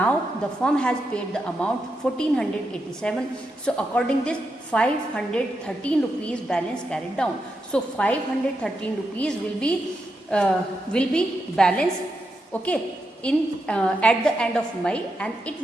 the firm has paid the amount 1487. So according this 513 rupees balance carried down. So 513 rupees will be balance, okay, in at the end of May and it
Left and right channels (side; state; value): both; normal; correlation 0.85